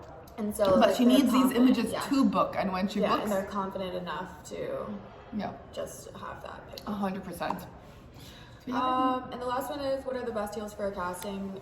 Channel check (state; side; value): identical; both; correlation 1.00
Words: And so, but like, she needs these images yeah. to book, and when she books, and they're confident enough to just have that pick. 100%. And the last one is, what are the best heels for a casting?